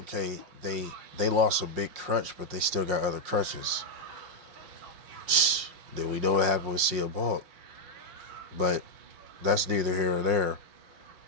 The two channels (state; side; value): late; left; 5.5 ms